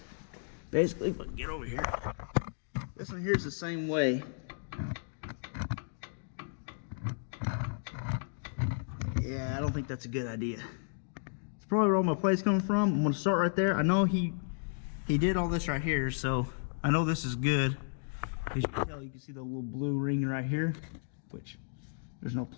Basically, if I get over here, this one here's the same way. Yeah, I don't think that's a good idea. It's probably where all my play's coming from. I'm gonna start right there. I know he did all this right here, so I know this is good. As you can tell, you can see the little blue ring right here, which there's no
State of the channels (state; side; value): silent; right; digital silence